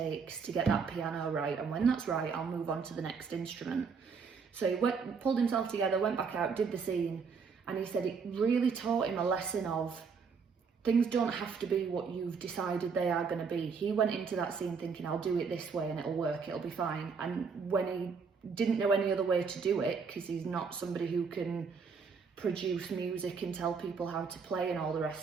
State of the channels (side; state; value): left; quieter; 5.5 dB